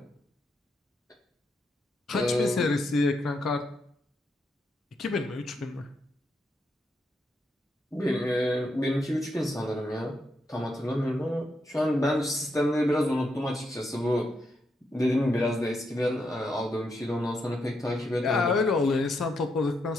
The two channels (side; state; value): both; normal; correlation 0.81